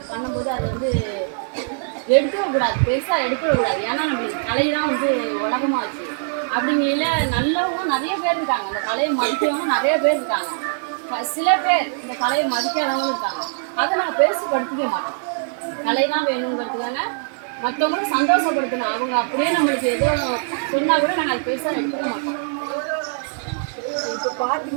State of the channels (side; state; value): left; silent; digital silence